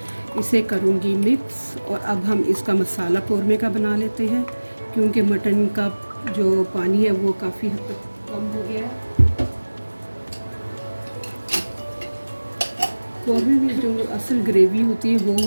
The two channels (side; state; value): both; inverted; correlation -1.00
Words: इसे करूंगी मिक्स। और अब हम इसका मसाला कौरमे का बना लेते हैं क्योंकि मटन का जो पानी है वो काफ़ी हद तक कम हो गया है। कौरमे में जो असल ग्रेवी होती है